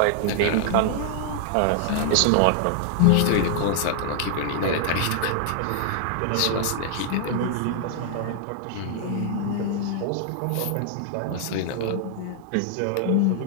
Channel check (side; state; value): both; different; correlation -0.01